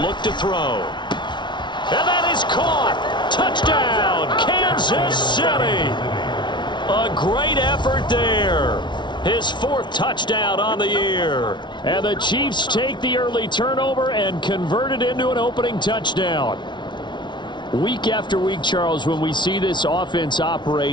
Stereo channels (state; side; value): late; right; 0.22 ms